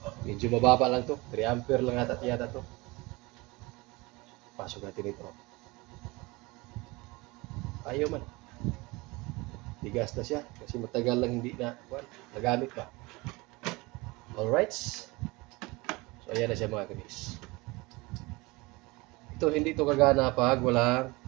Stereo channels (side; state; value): left; quieter; 23.6 dB